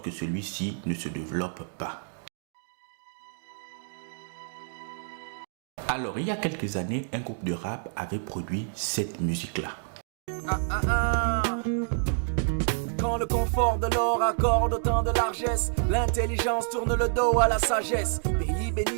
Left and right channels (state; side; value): silent; left; digital silence